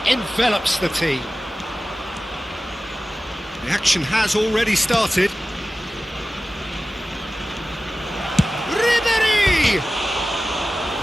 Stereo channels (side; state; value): both; normal; correlation 0.96